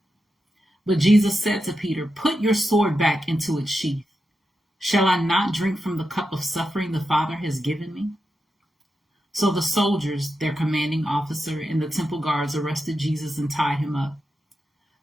But Jesus said to Peter, "Put your sword back into its sheath. Shall I not drink from the cup of suffering the Father has given me?" So the soldiers, their commanding officer, and the temple guards arrested Jesus and tied him up.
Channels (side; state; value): both; normal; correlation 0.88